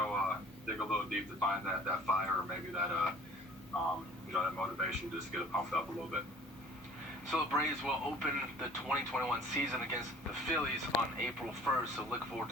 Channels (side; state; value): both; normal; correlation 0.50